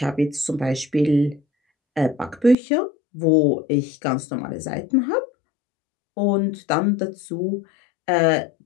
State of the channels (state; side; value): drops out; right; at 2.6 s